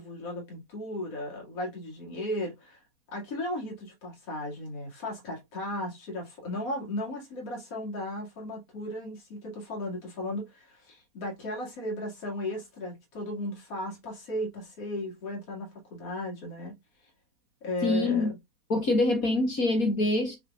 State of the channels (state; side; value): late; right; 4.2 ms